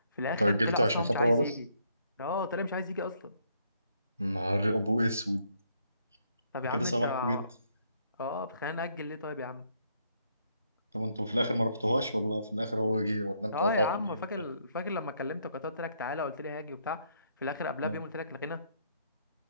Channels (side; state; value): both; inverted; correlation -0.71